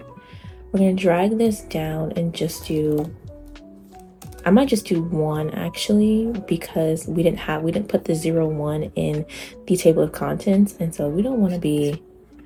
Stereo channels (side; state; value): both; identical; correlation 1.00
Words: We're gonna drag this down and just do, I might just do 1 actually, because we didn't put the 0, 1 in the table of contents, and so we don't want to be,